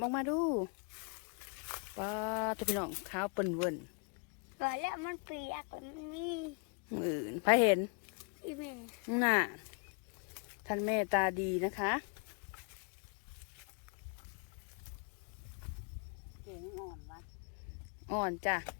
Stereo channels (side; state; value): right; quieter; 38.0 dB